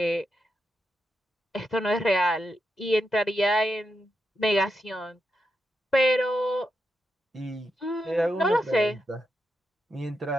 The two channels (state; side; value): normal; both; correlation 0.85